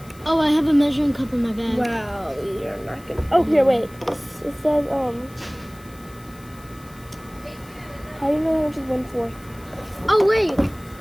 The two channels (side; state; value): left; noise; hiss, 24 dB below the sound